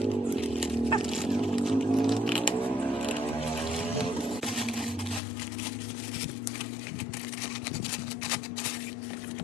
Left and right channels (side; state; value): right; drops out; at 5.2 s